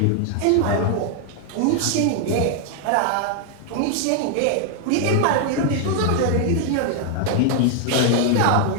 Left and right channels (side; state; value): both; different; correlation 0.00